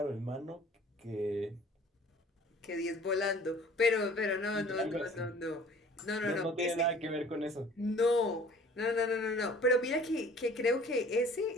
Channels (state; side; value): normal; both; correlation 0.50